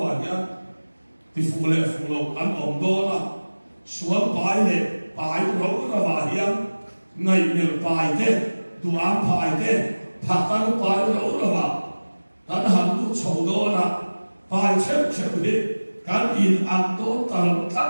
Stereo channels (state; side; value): inverted; both; correlation -1.00